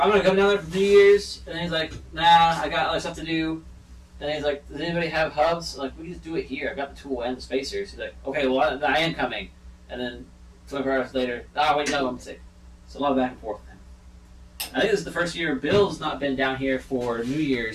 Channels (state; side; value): identical; both; correlation 1.00